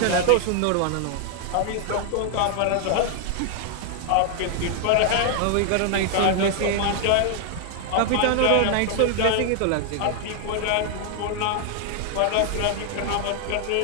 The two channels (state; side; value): different; both; correlation 0.00